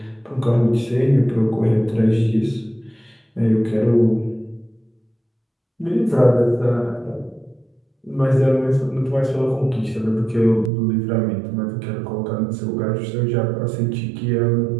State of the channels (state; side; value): drops out; left; at 10.7 s